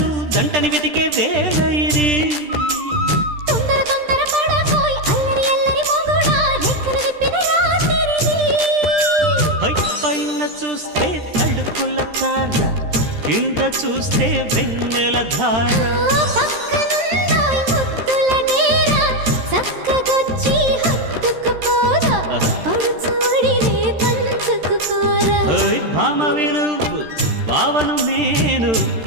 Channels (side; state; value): left; late; 13 ms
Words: జంటని వెతికే వేళ ఇది తొందర తొందర పడకోయ్ అల్లరి అల్లరి మొగుడా రెక్కలు విప్పిన రాత్రిది పైన చూస్తే తడుకుల తార కింద చూస్తే వెన్నెల ధార పక్కనుందోయ్ ముద్దుల డేరా చక్కగొచ్చి హత్తుకుపోరా పడుచోడినే పంచుకుపోరా భామ వినువు భావను నేను